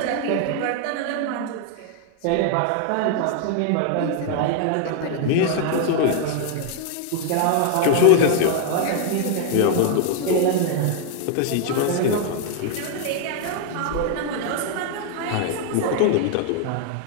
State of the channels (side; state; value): both; different; correlation 0.00